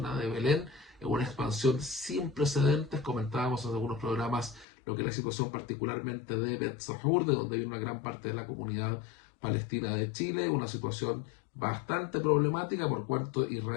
de Belén, en una expansión sin precedentes. Comentábamos en algunos programas lo que es la situación particularmente de Bet Sahur, de donde viene una gran parte de la comunidad palestina de Chile, una situación bastante problemática por cuanto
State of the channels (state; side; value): drops out; right; at 4.7 s